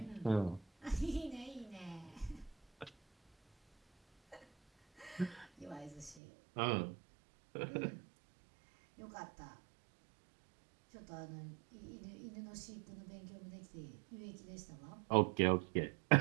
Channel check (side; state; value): left; drops out; at 6.2 s